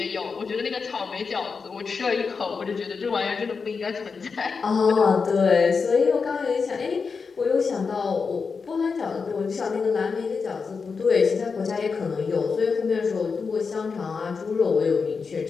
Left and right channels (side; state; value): right; quieter; 5.1 dB